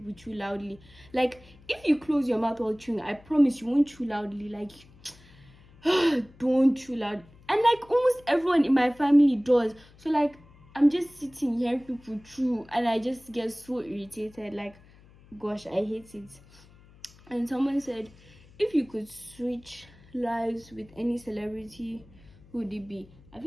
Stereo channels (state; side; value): noise; left; hum, 25 dB below the sound